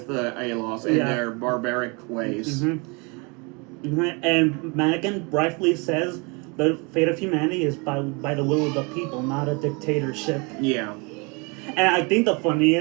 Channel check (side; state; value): left; quieter; 30.4 dB